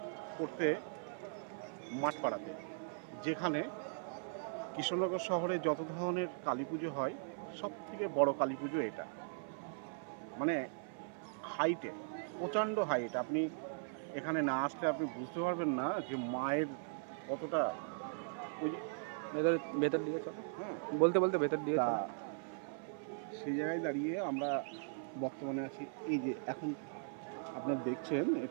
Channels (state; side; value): silent; left; 52 dB below the other